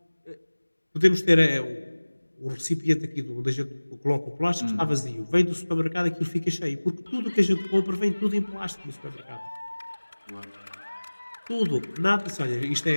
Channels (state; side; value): inverted; both; correlation -1.00